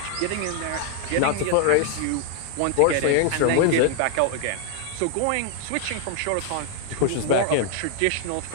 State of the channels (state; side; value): different; both; correlation 0.00